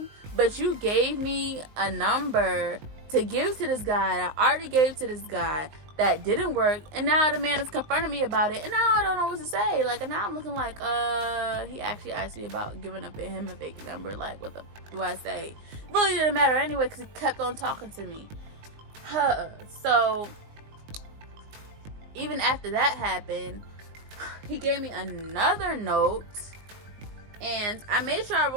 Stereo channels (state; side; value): late; left; 19 ms